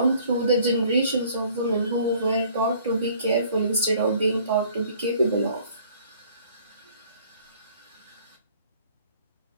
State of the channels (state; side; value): inverted; both; correlation -0.56